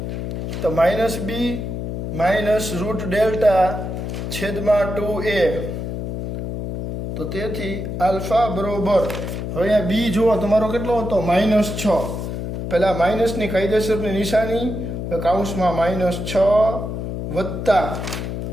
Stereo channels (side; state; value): left; noise; hum, 4 dB below the sound